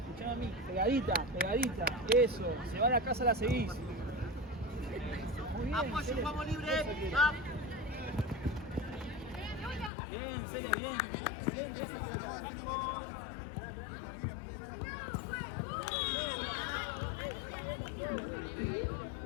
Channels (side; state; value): right; drops out; at 9.9 s